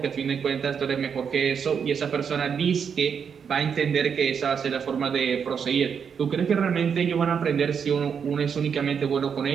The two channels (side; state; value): left; quieter; 6.9 dB